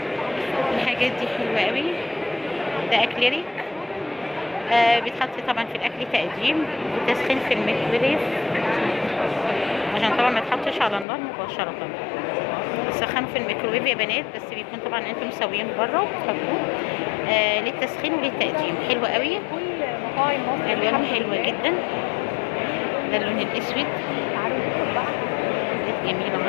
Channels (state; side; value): drops out; right; at 11.1 s